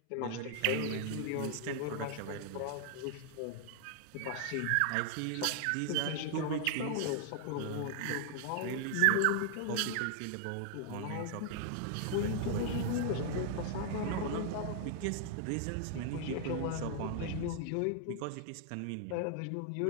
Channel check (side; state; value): both; different; correlation 0.00